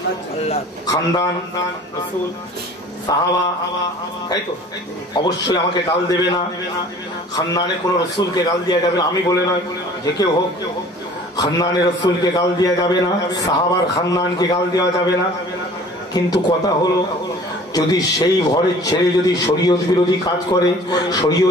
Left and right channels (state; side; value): normal; both; correlation 0.48